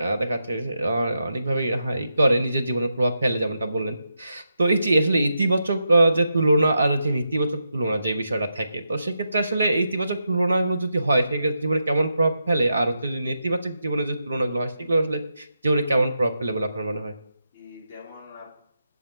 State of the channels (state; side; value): inverted; both; correlation -0.85